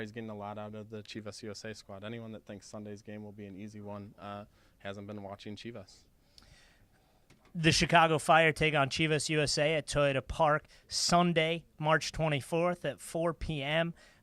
getting a lot out of the Chivas USA squad. Anyone that thinks Sunday's game will be an easy one hasn't been watching Chivas. The Chicago Fire take on Chivas USA at Toyota Park Sunday, March 24th at 4 p.m.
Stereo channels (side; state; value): both; identical; correlation 1.00